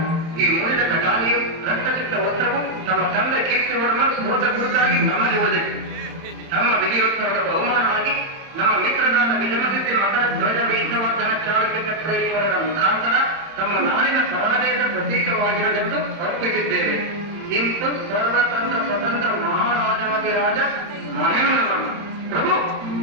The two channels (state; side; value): late; left; 31 ms